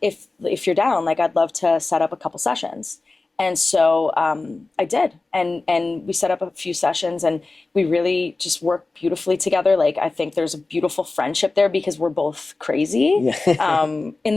you're down, like, I'd love to set up a couple sessions. And so I did, and we set up a few sessions, and we really just worked beautifully together. Like I think there's a beautiful friendship there because we're both crazy, in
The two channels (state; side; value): quieter; right; 3.5 dB